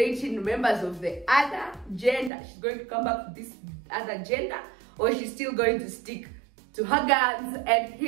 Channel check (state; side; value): drops out; left; at 2.3 s